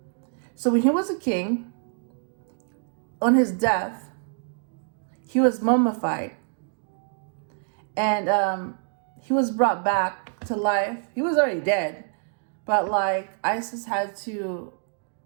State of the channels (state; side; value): silent; left; 61 dB below the other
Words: So when he was a king, on his death, he was mummified. And he was brought back to life. He was already dead. But like Isis had to